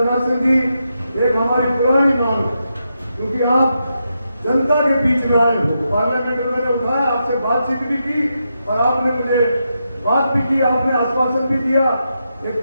सिंह जी, एक हमारी पुरानी मांग, क्योंकि आप जनता के बीच में आए हो, पार्लियामेंट में मैंने उठाया, आपसे बातचीत भी की और आपने मुझे बात भी की, आपने आश्वासन भी दिया। एक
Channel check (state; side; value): inverted; both; correlation -0.85